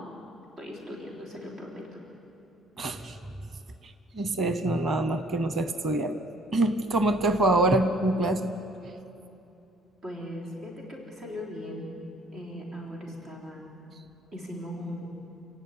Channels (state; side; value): normal; both; correlation 0.59